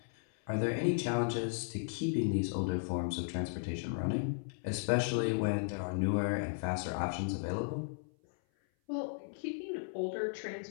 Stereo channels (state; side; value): silent; right; 54 dB below the other